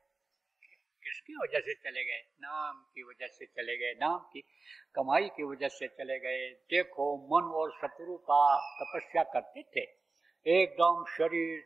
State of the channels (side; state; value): left; quieter; 3.7 dB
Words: किसकी वजह से चले गए? नाम की वजह से चले गए, नाम की कमाई की वजह से चले गए। देखो मन और शत्रु का तपस्या करते थे, एकदम शरीर